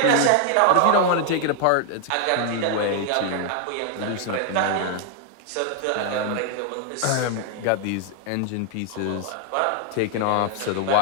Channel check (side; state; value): both; different; correlation 0.00